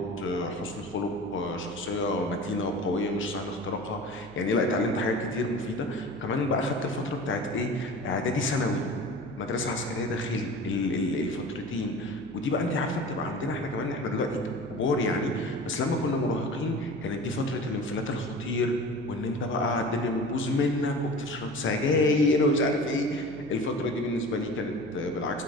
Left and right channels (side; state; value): right; noise; hum, 22 dB below the sound